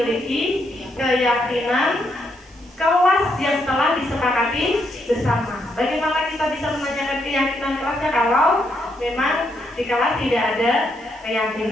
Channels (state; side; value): noise; right; hiss, 28 dB below the sound